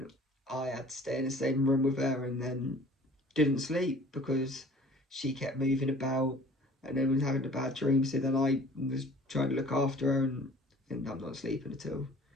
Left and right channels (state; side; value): normal; both; correlation 0.50